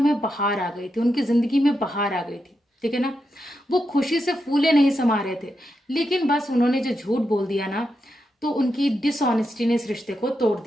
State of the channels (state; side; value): normal; both; correlation 0.86